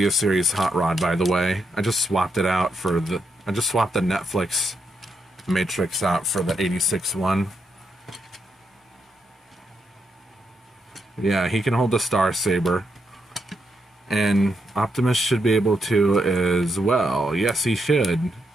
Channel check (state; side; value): normal; both; correlation 0.81